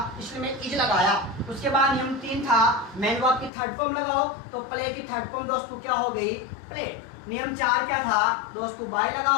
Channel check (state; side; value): drops out; right; at 3.5 s